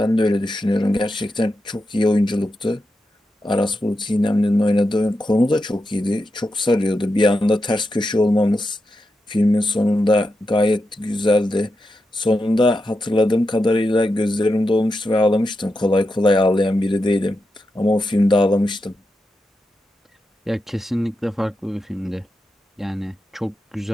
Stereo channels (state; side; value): normal; both; correlation 0.88